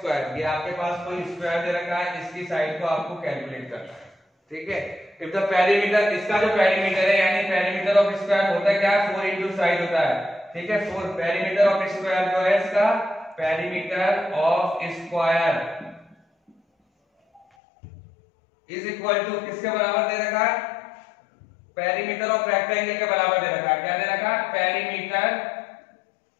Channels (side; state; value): right; drops out; at 17.4 s